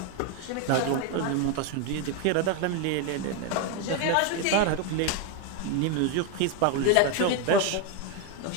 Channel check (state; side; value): different; both; correlation 0.02